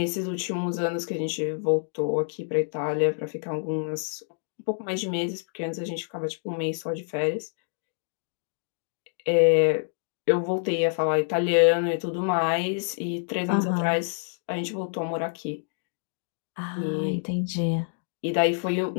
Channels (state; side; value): silent; right; digital silence